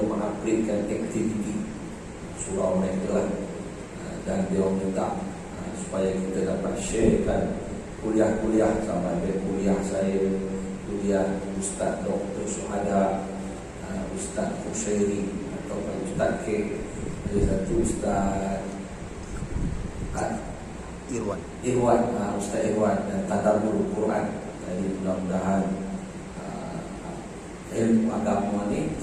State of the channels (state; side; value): identical; both; correlation 1.00